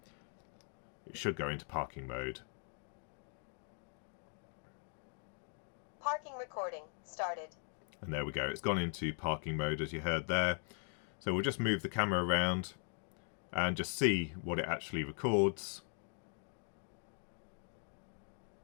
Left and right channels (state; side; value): silent; right; 51 dB below the other